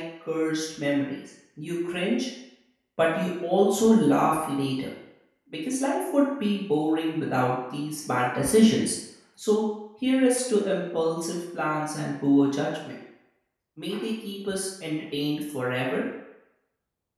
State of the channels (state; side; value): identical; both; correlation 1.00